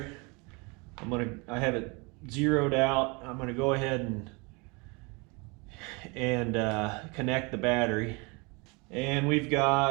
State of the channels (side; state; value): left; quieter; 29.0 dB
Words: I have it zeroed out. I'm going to go ahead and connect the battery. And we've